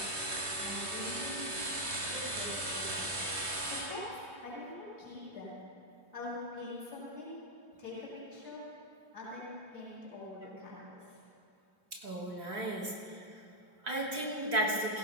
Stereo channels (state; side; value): late; left; 3.2 ms